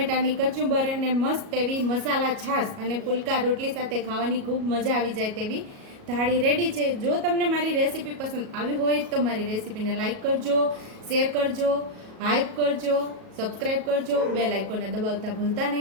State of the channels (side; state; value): left; late; 37 ms